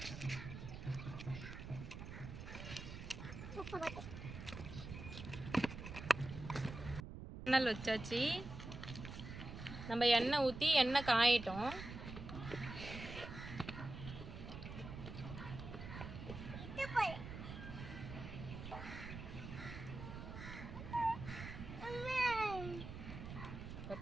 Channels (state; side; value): noise; right; rumble, 9 dB below the sound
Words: எண்ணெய் வச்சாச்சு. நம்ம எண்ணெய் ஊற்றி எண்ணெய் காயட்டும்.